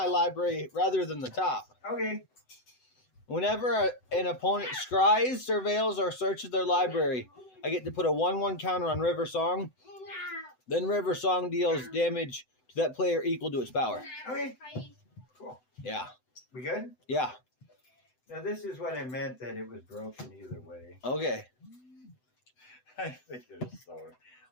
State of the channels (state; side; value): late; right; 7.9 ms